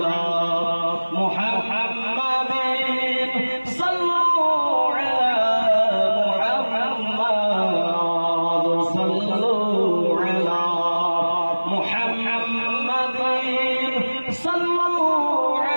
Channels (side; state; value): both; inverted; correlation -1.00